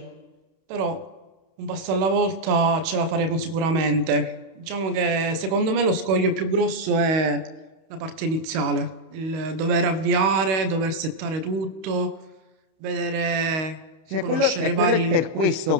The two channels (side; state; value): left; late; 31 ms